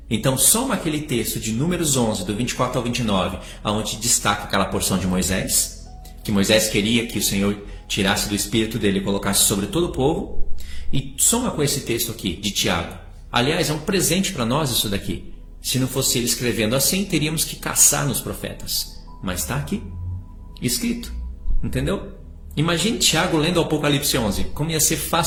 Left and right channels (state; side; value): identical; both; correlation 1.00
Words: Então soma aquele texto de Números 11, do 24 ao 29, onde destaca aquela porção de Moisés, que Moisés queria que o Senhor tirasse do espírito dele e colocasse sobre todo o povo, e soma com esse texto aqui, de Tiago. Aliás, é um presente para nós isso daqui. Se não fosse ele escrevendo assim, teríamos que caçar nos profetas. Mas está aqui, escrito. Entendeu? Imagine Tiago lendo o Apocalipse 11, como ia ser